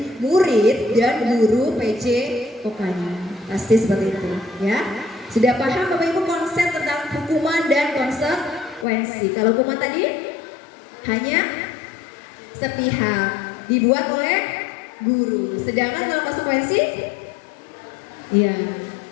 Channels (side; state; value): right; drops out; at 8.8 s